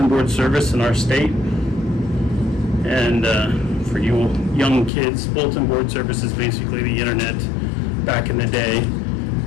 board service in our state. And for you young kids, bulletin board service is basically the internet back in the day,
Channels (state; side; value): drops out; right; at 4.9 s